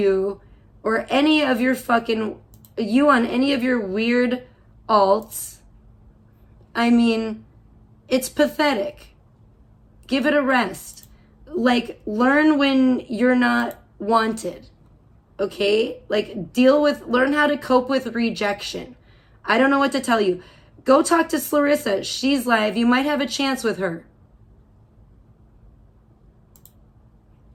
or any of your fucking, you on any of your weird alts. I mean, it's pathetic. Give it a rest. Like, learn when you're not wanted. Okay? Like, learn how to cope with rejection. I don't know what to tell you. Go talk to Clarissa. She's live. You might have a chance with her.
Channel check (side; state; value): both; identical; correlation 1.00